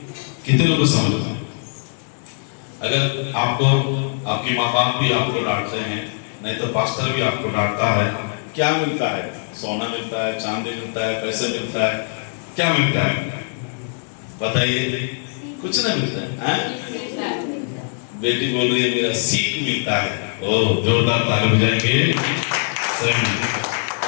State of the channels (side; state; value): right; silent; digital silence